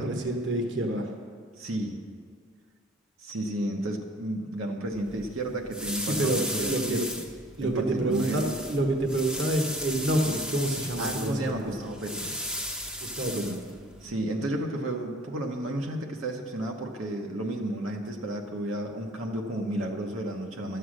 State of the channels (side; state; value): both; normal; correlation 0.51